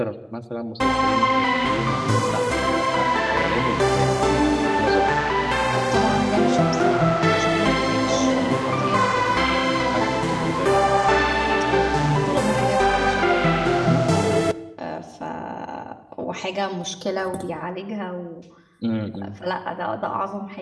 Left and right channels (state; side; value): identical; both; correlation 1.00